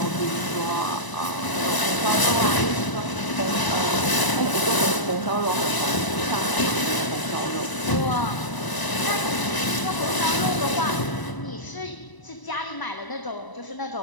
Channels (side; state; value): right; late; 1.0 ms